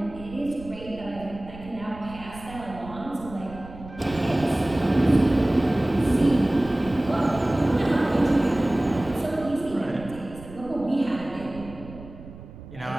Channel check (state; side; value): noise; right; rumble, 16 dB below the sound